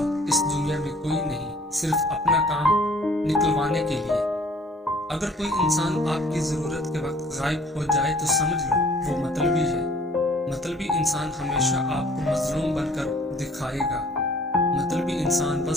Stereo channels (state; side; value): normal; both; correlation 0.54